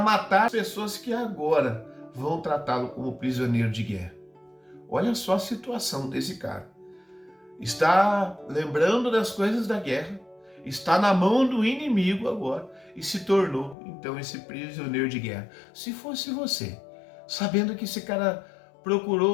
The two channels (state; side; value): drops out; right; at 13.8 s